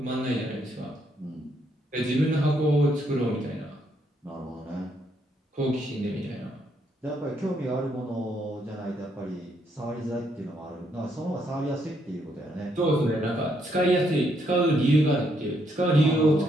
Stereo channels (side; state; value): both; normal; correlation 0.74